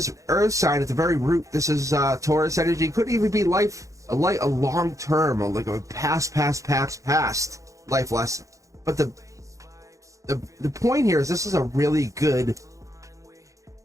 Earth sign at the very root. This is Taurus energy. Could even be a long term, or like a past life lesson. But the point here is this is a really good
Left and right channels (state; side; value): late; left; 0.16 ms